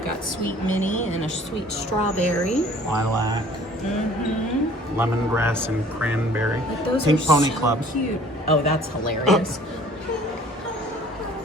got sweet Minnie and a sweet strawberry. Lilac. Lemongrass and cranberry. Like those Pink are Pony so Club. Cute. Oh, that's hilarious.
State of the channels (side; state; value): both; normal; correlation 0.52